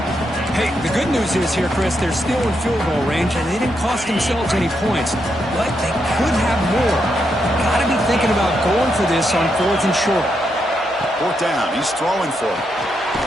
Hey, the good news is here, Chris, they're still in field goal range, and they didn't cost themselves any points. But they could have more. Got to be thinking about going for this on 4th and short. 4th down. He's throwing for it.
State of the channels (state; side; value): normal; both; correlation 0.81